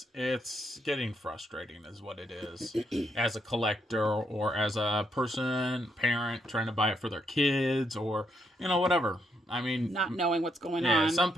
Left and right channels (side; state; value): both; normal; correlation 0.76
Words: getting frustrating, is what it is, as a collector or as a parent trying to buy it for their kids or whatever. I mean, not knowing what's going yeah, on. some